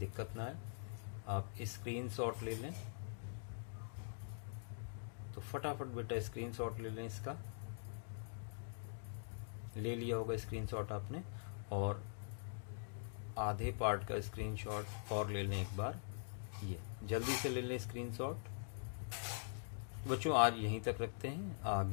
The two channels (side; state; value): right; silent; digital silence